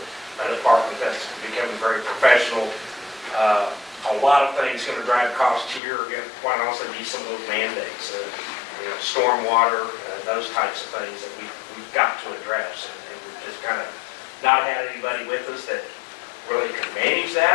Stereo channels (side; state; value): right; drops out; at 5.8 s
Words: a department that's becoming very professional. A lot of things going to drive costs here are going to, quite honestly, be some of those mandates, stormwater, those types of things that we've got to address. And we've just kind of not had anybody with us that really could manage